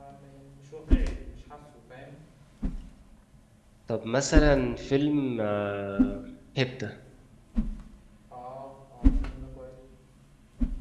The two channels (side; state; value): both; identical; correlation 1.00